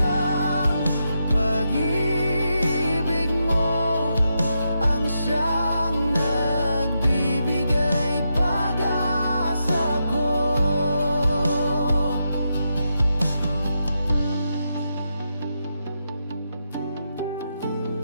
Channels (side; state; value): both; inverted; correlation -0.84